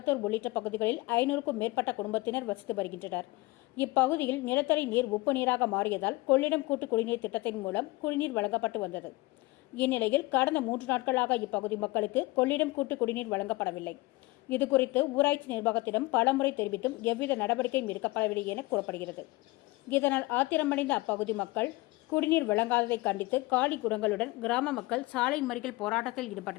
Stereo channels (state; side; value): quieter; right; 21.6 dB